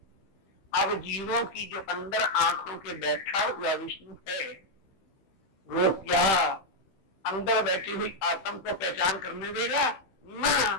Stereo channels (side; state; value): right; late; 15 ms